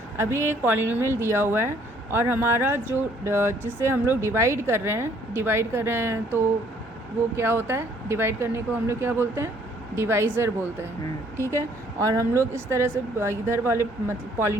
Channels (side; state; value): both; normal; correlation 0.62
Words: अभी एक पॉलिनोमियल दिया हुआ है और हमारा जो जिससे हम लोग डिवाइड कर रहे हैं तो वो क्या होता है? डिवाइड करने को हम लोग क्या बोलते हैं? डिवाइज़र बोलते हैं, ठीक है। और हम लोग इस तरह से इधर वाले मतलब